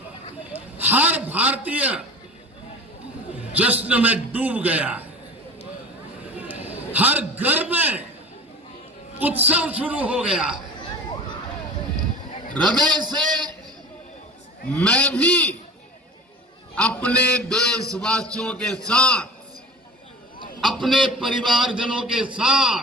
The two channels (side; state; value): both; normal; correlation 0.37